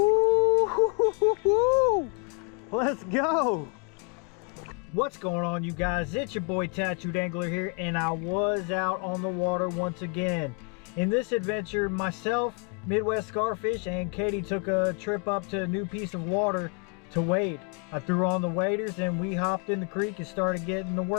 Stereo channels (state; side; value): quieter; right; 36.1 dB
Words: Let's go. What's going on, you guys? It's your boy Tattooed Angler here, and I was out on the water once again. In this adventure, myself, Midwest Scarfish, and Katie took a trip up to a new piece of water to wade. I threw on the waders and we hopped in the creek and started getting the